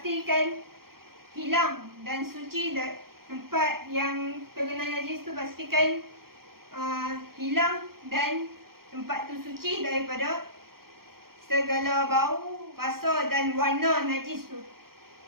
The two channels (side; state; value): left; late; 0.93 ms